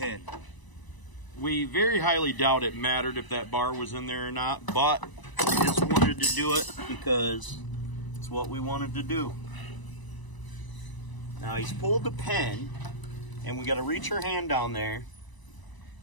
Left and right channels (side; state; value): right; late; 1.0 ms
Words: We very highly doubt it mattered if that bar was in there or not, but we just wanted to do it because it's what we wanted to do. Now he's pulled the pin, and we got to reach our hand down there,